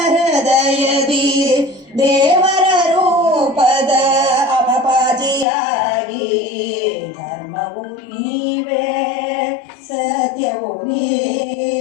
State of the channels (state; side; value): drops out; right; at 5.5 s